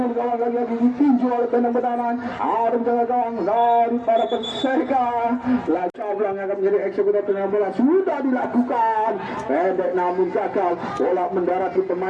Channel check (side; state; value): both; identical; correlation 1.00